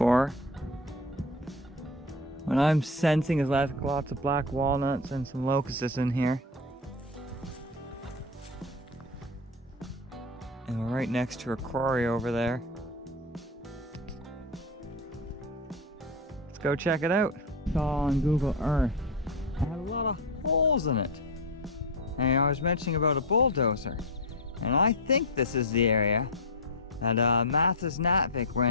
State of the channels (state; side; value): normal; both; correlation 0.16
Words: What I'm sensing is lots of black walnuts and some locusts in here. And we're right next to a quarry over there. Let's go check it out. Saw on Google Earth. It had a lot of holes in it. And I was mentioning about a bulldozer. And I think this is the area that Mathis Natvik